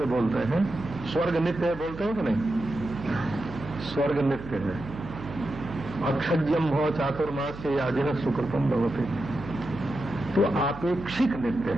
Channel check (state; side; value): noise; right; hum, 13 dB below the sound